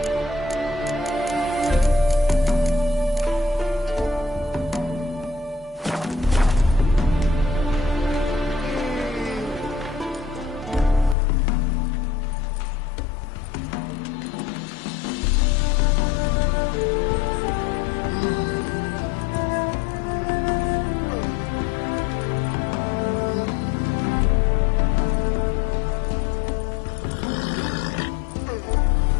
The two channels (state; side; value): drops out; right; at 11.2 s